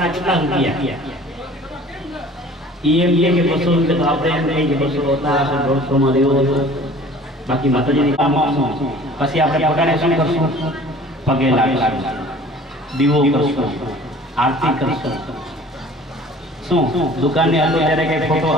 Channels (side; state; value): both; normal; correlation 0.48